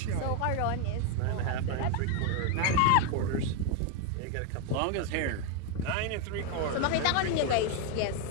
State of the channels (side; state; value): both; different; correlation 0.01